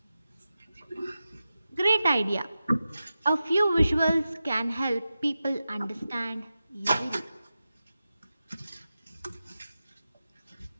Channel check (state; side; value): inverted; both; correlation -0.93